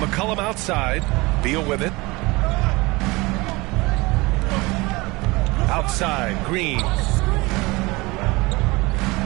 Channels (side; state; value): left; quieter; 23.4 dB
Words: McCollum outside. Beal with it. Outside, Green.